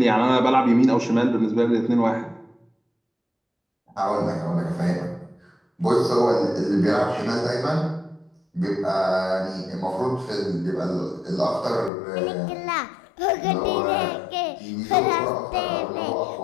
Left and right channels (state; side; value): drops out; right; at 11.9 s